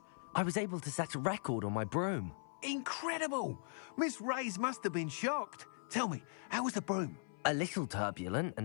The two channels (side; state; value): right; silent; 52 dB below the other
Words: I was able to set a record on my broom. Incredible! Miss Reyes must have been shocked. Tell me, how was the broom? A little turbulent, and